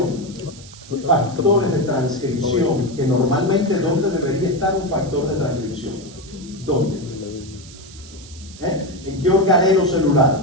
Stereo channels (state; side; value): noise; right; hiss, 19 dB below the sound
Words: Factores de transcripción, que normalmente, ¿dónde debería estar un factor de transcripción? ¿Dónde? ¿En qué organelo